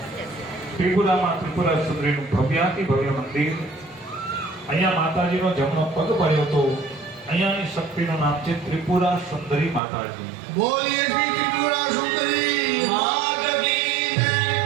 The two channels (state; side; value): drops out; left; at 9.8 s